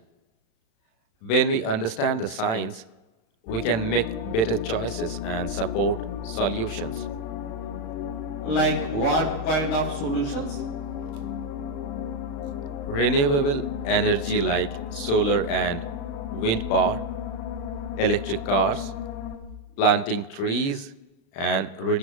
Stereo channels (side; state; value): right; late; 36 ms